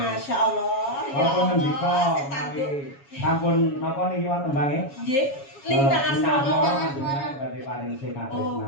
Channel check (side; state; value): right; late; 7.2 ms